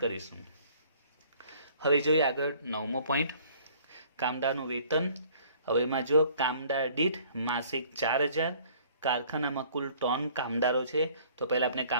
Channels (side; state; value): both; inverted; correlation -0.56